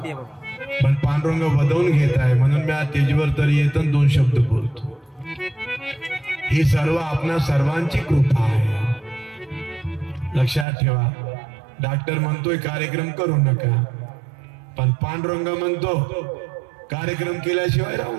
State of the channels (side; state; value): left; drops out; at 10.7 s